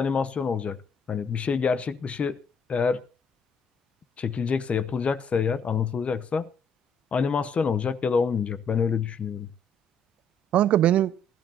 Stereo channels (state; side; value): normal; both; correlation 0.65